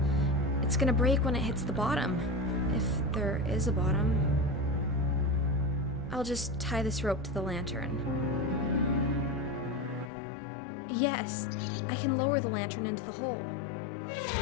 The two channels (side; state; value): right; drops out; at 10.1 s